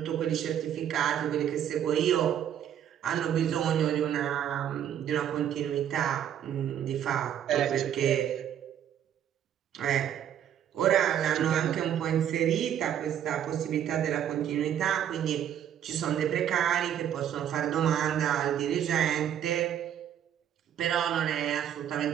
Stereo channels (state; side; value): quieter; left; 9.9 dB